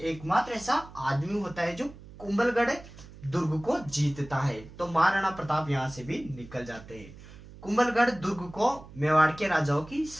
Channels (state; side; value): noise; right; hum, 18 dB below the sound